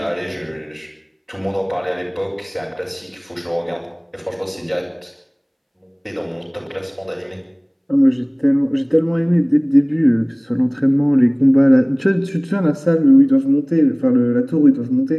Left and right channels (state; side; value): identical; both; correlation 1.00